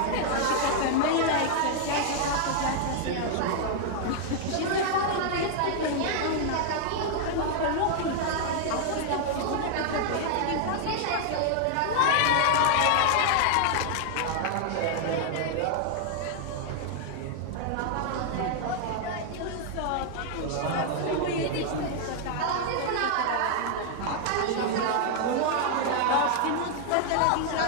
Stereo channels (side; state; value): both; different; correlation 0.00